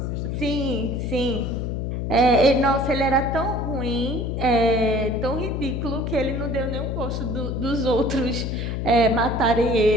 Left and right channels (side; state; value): left; noise; hum, 2 dB below the sound